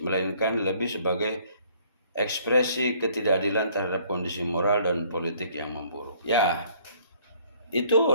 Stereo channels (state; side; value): inverted; both; correlation -0.60